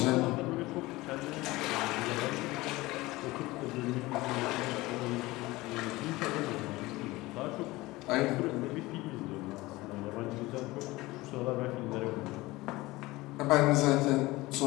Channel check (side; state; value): right; quieter; 20.1 dB